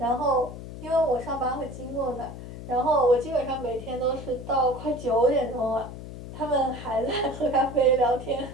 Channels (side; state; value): left; noise; hum, 11 dB below the sound